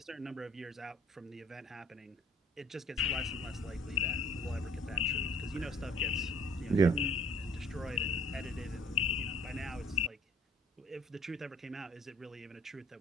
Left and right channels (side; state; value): both; normal; correlation 0.57